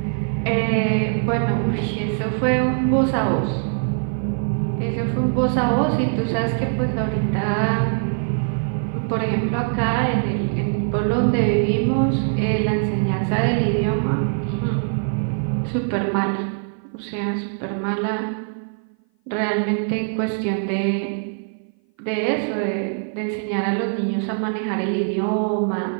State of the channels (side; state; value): left; silent; 57 dB below the other